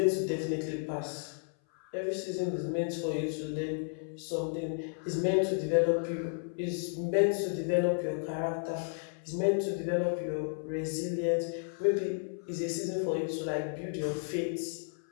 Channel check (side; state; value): right; silent; 56 dB below the other